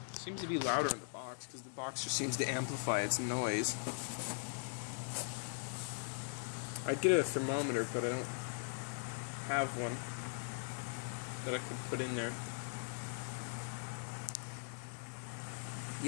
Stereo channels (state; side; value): silent; right; 51 dB below the other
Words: Seems to be louder in the box, because the box just seems to amplify its noise. I'd get a thermometer, but I don't have one that I could put in there.